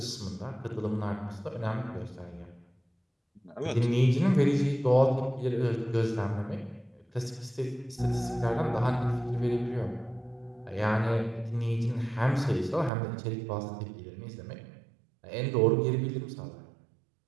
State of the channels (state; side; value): drops out; left; at 12.9 s